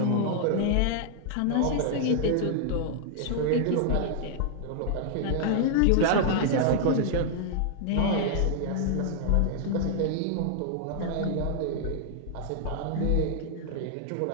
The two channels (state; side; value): different; both; correlation -0.01